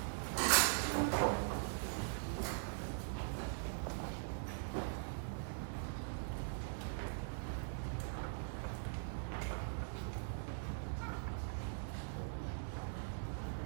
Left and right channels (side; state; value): left; silent; digital silence